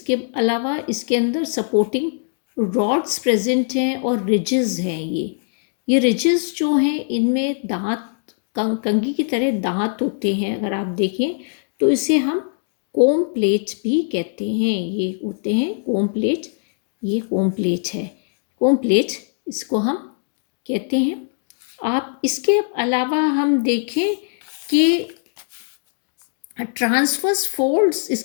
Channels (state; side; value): silent; right; digital silence